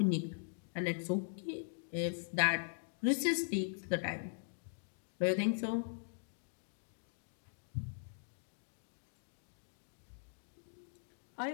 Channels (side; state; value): right; silent; digital silence